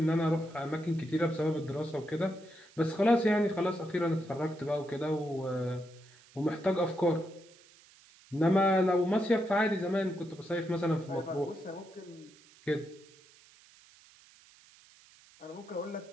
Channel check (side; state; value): right; noise; hiss, 26 dB below the sound